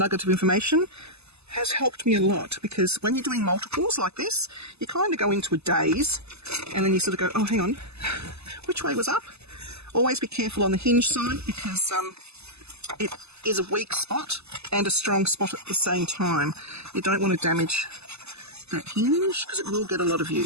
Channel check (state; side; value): late; left; 0.79 ms